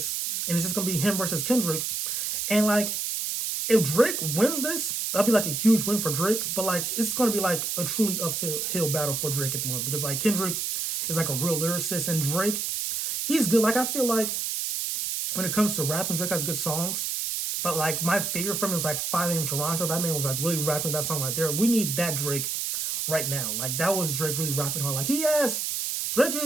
And it's just going to be him versus Kendrick. And, like, if Drake wins this, that'll be, like, a huge win for Drake. But, like, it's going to be, like, a truly uphill battle for Drake at the moment. Because, like, Kendrick is, like, a real lyricist. And Drake, he's good. Like, I feel like when it comes to rapping, Drake has good songs. But, like, my favorite from him is, like, 5 AM Toronto. That man was, like, really rapping that song right there. We need that Drake right now. Like, that was Drake really rapping hard. Like, Drake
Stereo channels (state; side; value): noise; right; hiss, 1 dB below the sound